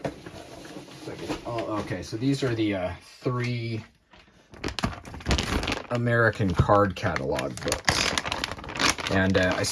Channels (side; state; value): both; identical; correlation 1.00